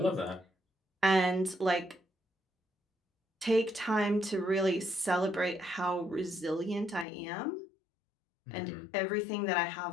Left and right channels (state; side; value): drops out; right; at 7.1 s